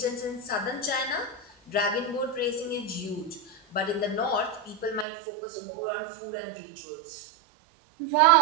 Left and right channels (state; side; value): drops out; left; at 5.1 s